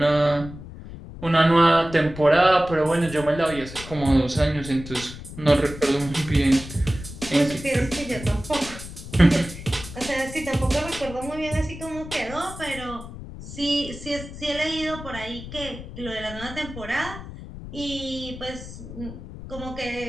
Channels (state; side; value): noise; left; rumble, 12 dB below the sound